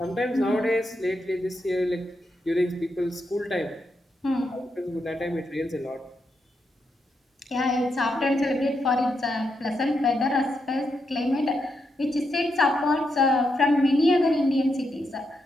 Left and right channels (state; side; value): normal; both; correlation 0.82